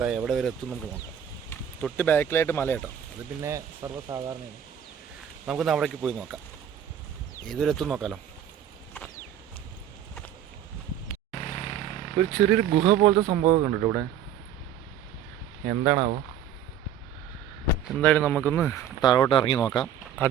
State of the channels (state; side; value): quieter; left; 9.1 dB